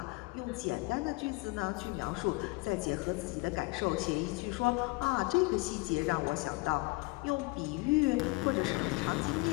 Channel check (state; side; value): quieter; right; 25.3 dB